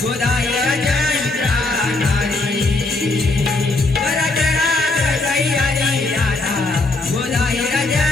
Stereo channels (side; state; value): right; quieter; 3.1 dB